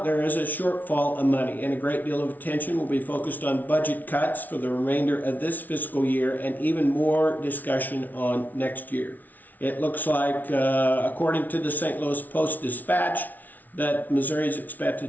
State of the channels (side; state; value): right; late; 0.080 ms